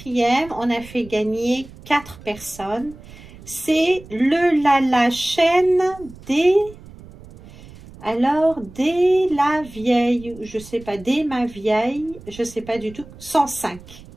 on a fait gagner 4 personnes. C'est la chaîne des... Alors, dès la vieille, je sais pas, dès ma vieille, je sais pas du tout, 105.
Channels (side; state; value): right; noise; rumble, 19 dB below the sound